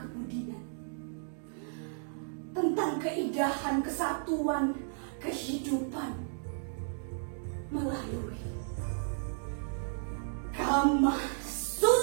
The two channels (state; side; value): silent; left; digital silence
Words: tentang keindahan kesatuan kehidupan melalui Kama